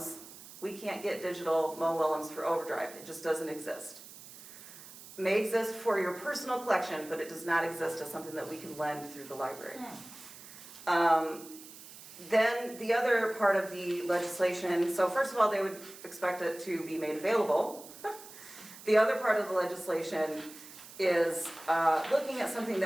we can't get digital Mo Willems for Overdrive. It just doesn't exist. It may exist for your personal collection, but it does not exist as something that we can lend through the library. Then the other part of the legislation, so first of all, they would expect it to be made available. The other part of the legislation is looking at something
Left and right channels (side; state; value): right; noise; hiss, 17 dB below the sound